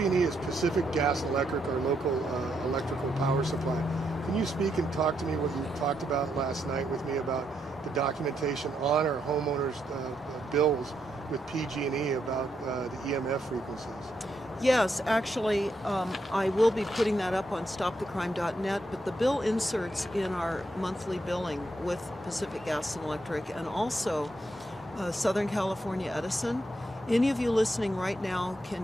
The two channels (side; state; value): both; normal; correlation 0.79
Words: is Pacific Gas and Electric, our local electrical power supply. Can you speak and talk to me what you talked about last night with me about the documentation on our homeowners' bills with PG&E about the EMF frequencies? Yes, actually, I will be putting that up on stopthecrime.net, but the bill inserts in our monthly billing with Pacific Gas and Electric and also Southern California Edison. Any of you listening right now